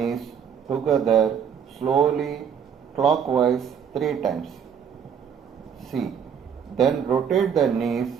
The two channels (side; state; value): left; quieter; 7.6 dB